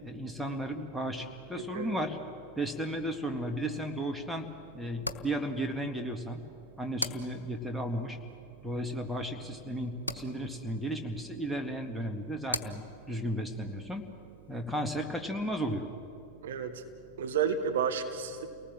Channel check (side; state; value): right; noise; hum, 20 dB below the sound